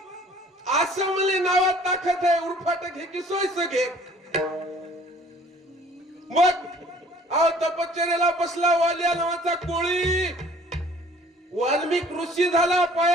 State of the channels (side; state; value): both; normal; correlation 0.54